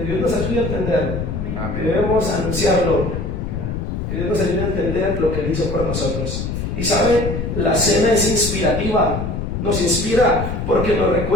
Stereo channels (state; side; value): noise; left; rumble, 3 dB below the sound